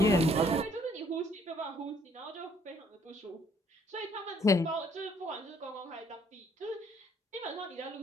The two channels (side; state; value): both; normal; correlation 0.64